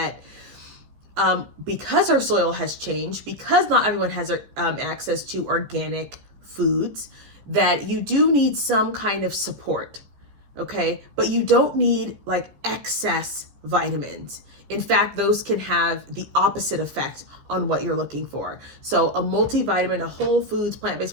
because our soil has changed, because not everyone has access to organic foods, that you do need some kind of support, okay? But you don't need like excess vitamins. In fact, those can have the opposite effect on what you're looking for. So a multivitamin, a whole foods, plant-based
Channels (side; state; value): left; late; 14 ms